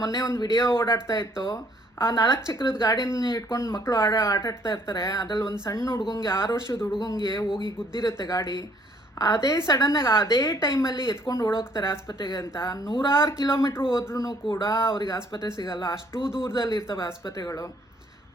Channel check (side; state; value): both; normal; correlation 0.63